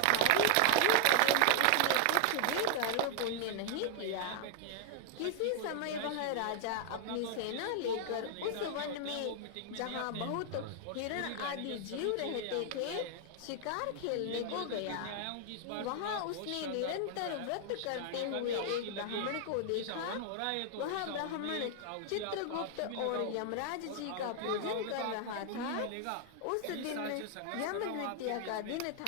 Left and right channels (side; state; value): both; different; correlation 0.00